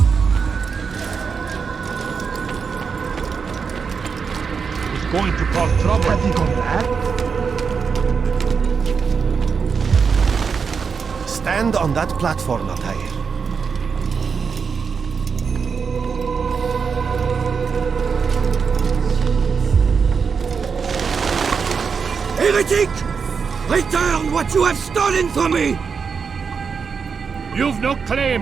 It's going to cause trouble. Have you gone mad? Stand on that platform, Altair. Heretic! Return what you have stolen from me! You've no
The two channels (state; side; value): quieter; left; 5.8 dB